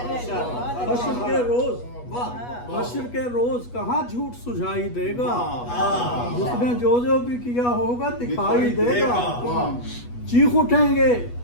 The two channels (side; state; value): right; late; 8.2 ms